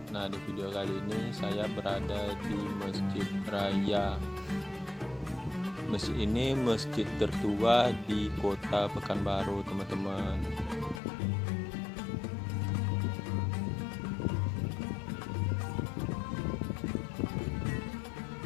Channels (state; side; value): drops out; right; at 11.0 s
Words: Nah, di video kali ini saya berada di Masjid Raya. Masjid ini masjid tertua di Kota Pekanbaru, teman-teman.